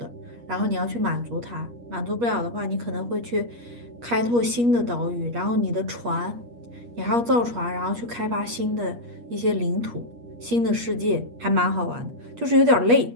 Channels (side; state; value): left; late; 8.4 ms